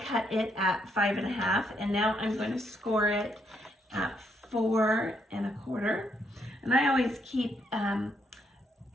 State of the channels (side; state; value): both; normal; correlation 0.75